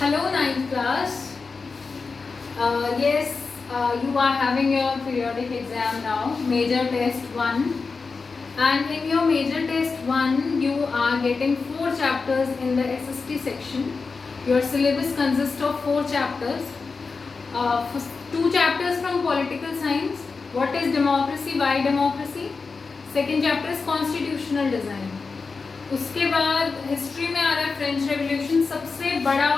Hello, ninth class. Yes, you are having your periodic exam now, major test 1. And in your major test 1, you are getting 4 chapters in the SST section. Your syllabus consists of 4 chapters. 2 chapters from political science. What is democracy? Why democracy? Second chapter is constitutional design. उसके बाद history में आ रहा है French revolution, सबसे बड़ा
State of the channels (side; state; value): right; quieter; 4.5 dB